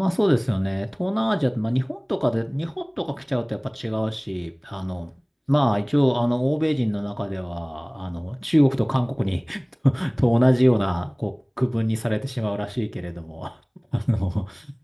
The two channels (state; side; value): identical; both; correlation 1.00